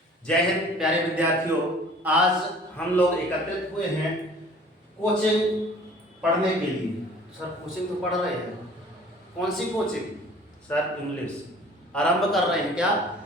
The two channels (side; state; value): both; normal; correlation 0.49